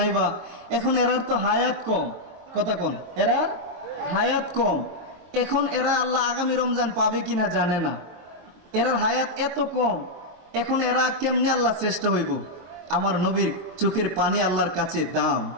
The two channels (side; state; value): left; late; 23 ms